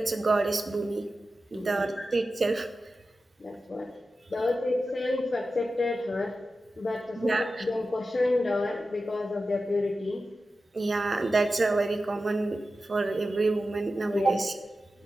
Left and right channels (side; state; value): both; normal; correlation 0.93